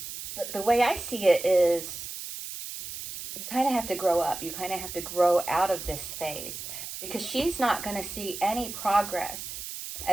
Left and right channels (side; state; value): right; noise; hiss, 8 dB below the sound